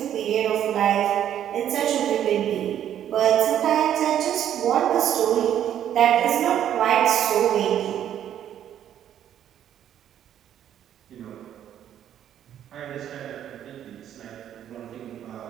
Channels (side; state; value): left; quieter; 10.4 dB